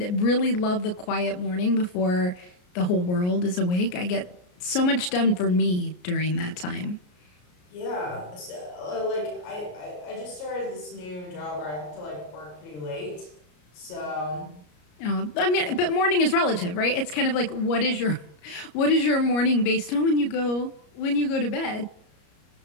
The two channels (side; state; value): right; late; 33 ms